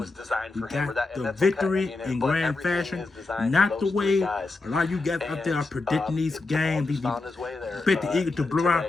We got the victory in grand fashion. Not the way a lot of you guys out there are predicting these games. Bet the Eagles to blow our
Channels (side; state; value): right; quieter; 3.4 dB